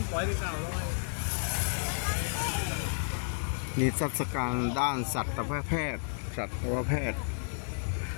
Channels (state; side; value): silent; right; digital silence